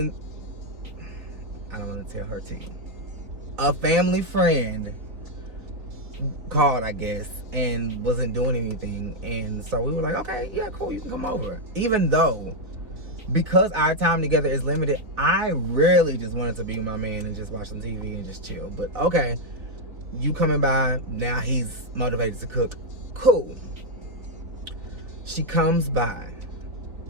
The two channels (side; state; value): left; late; 3.7 ms